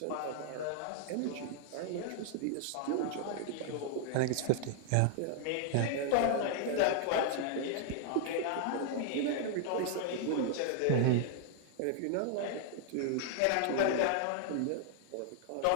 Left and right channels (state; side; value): different; both; correlation 0.00